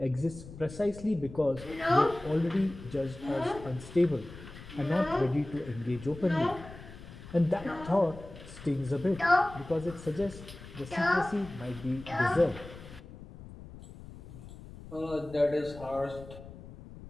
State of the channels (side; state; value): left; noise; rumble, 15 dB below the sound